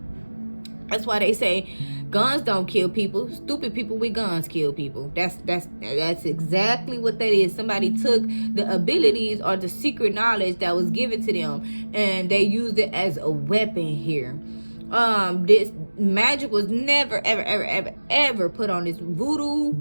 That's why they say guns don't kill people. Stupid people with guns kill people. That's exactly what that is. Somebody took the abilities or the secret knowledge that was given to them, and they used it as a weapon here. This magic was never ever put on this. Voodoo,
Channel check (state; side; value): inverted; both; correlation -1.00